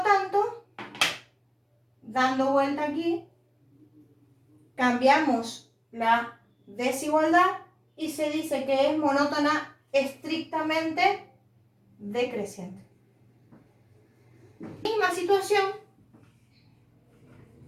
tanto, dando vuelta aquí, cambiamos la desigualdad y se dice que es monótona estrictamente decreciente. Misma situación,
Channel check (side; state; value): both; identical; correlation 1.00